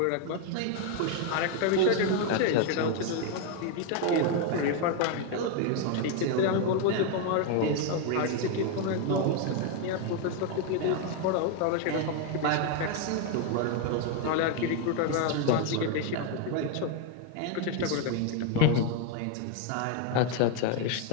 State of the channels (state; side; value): different; both; correlation 0.01